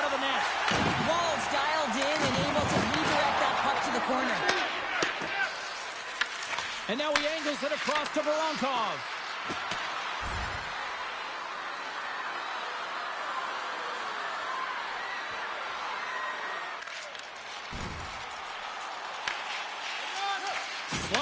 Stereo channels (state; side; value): identical; both; correlation 1.00